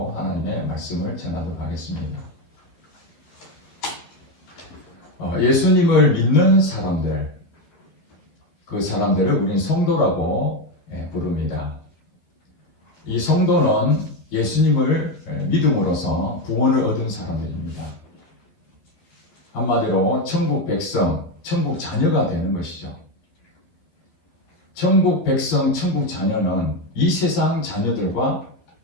하나님의 말씀을 전하도록 하겠습니다. 예수님을 믿는 사람들, 그 사람들을 우린 성도라고 부릅니다. 이 성도는 예수님을 믿음으로써 구원을 얻은 사람들입니다. 한마디로 천국 백성, 천국 자녀가 되는 것이죠. 천국 백성, 천국 자녀는 이 세상 자녀들과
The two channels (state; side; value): late; right; 12 ms